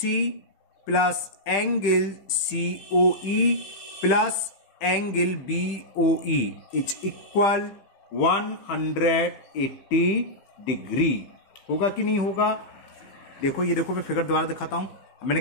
plus angle COE plus angle BOE is equal 180 degree होगा कि नहीं होगा. देखो ये देखो मैं फिगर दोबारा दिखाता हूं. मैंने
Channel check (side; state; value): right; late; 15 ms